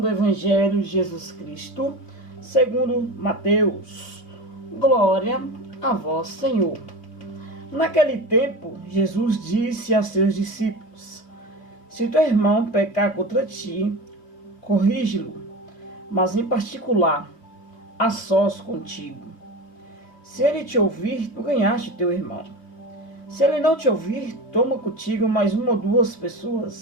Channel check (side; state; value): right; late; 3.1 ms